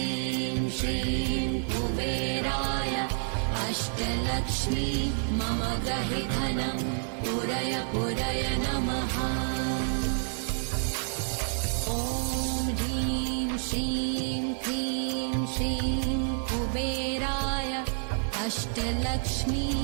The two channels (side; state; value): left; silent; 59 dB below the other